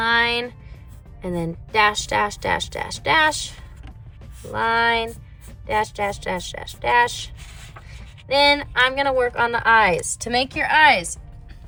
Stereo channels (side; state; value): both; identical; correlation 1.00